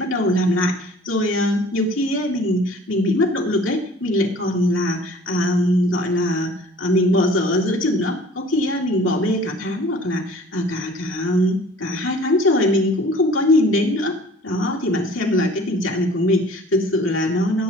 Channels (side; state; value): both; normal; correlation 0.49